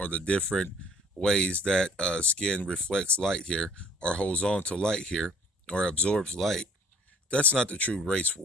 the different ways that skin reflects light here or holds on to light here or absorbs light. That's not the true race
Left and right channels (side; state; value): both; normal; correlation 0.55